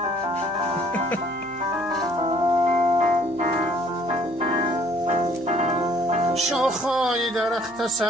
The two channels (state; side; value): noise; right; hum, 26 dB below the sound